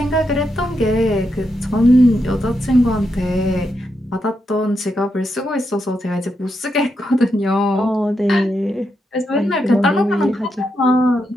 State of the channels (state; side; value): normal; both; correlation 0.83